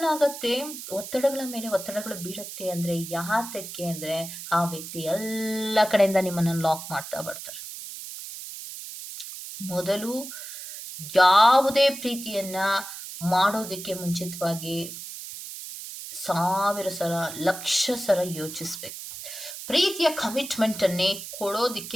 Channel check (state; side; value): noise; right; hiss, 10 dB below the sound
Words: ಆಗತ್ತೆ, ಒತ್ತಡಗಳ ಮೇಲೆ ಒತ್ತಡಗಳು ಬೀಳುತ್ತೆ ಅಂದ್ರೆ ಯಾತಕ್ಕೆ ಅಂದ್ರೆ ಆ ವ್ಯಕ್ತಿ ಎಲ್ಲ ಕಡೆಯಿಂದ ನಿಮ್ಮನ್ನ ಲಾಕ್ ಮಾಡ್ತಾ ಬರ್ತಾರೆ. ಮೊದಲು ಯಾವುದೇ ಪ್ರೀತಿಯನ್ನ ಮಾಡೋದಕ್ಕೆ ಮುಂಚಿತವಾಗಿ 1000 ಸಲ, ಲಕ್ಷ ಸಲ ಯೋಚಿಸ್ಬೇಕು. ಪ್ರೀತಿಯ ಕಮಿಟ್ಮೆಂಟ್ ಅನ್ನೇ